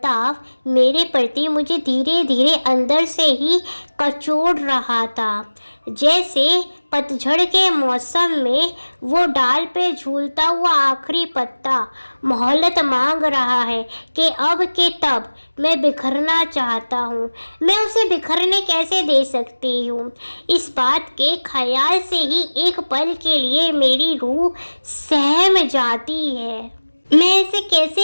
मेरे प्रति मुझे धीरे धीरे अंदर से ही कचोड़ रहा था। जैसे पतझड़ के मौसम में वो डाल पे झूलता हुआ आखिरी पत्ता मोहलत मांग रहा है कि अब के तब मैं बिखरना चाहता हूँ। मैं उसे बिखरने कैसे दे सकती हूँ? इस बात के ख्याल से ही एक पल के लिए मेरी रूह सहम जाती है। मैं ऐसे कैसे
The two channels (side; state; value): both; inverted; correlation -1.00